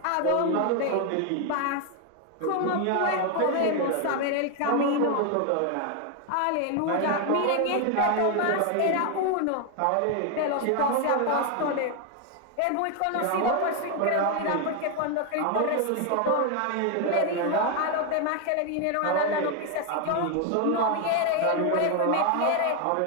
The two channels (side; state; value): both; different; correlation 0.01